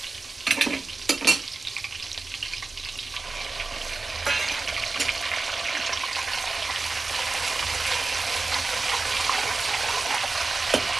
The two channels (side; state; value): left; quieter; 3.7 dB